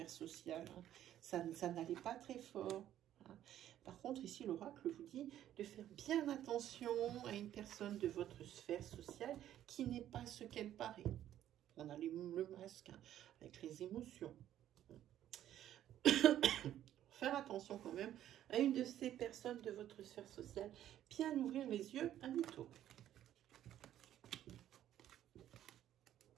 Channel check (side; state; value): left; quieter; 11.8 dB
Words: sociale. Hein. Ça n'allait pas très fort. Hein. Par contre, ici, l'oracle vous dit de faire bien attention à une personne de votre sphère sociale qui n'est pas ce qu'elle paraît. On a le masque, hein, avec les émotions. Faire attention quand même à une de ces personnes de votre sphère sociale. Bien ouvrir les yeux à mytho.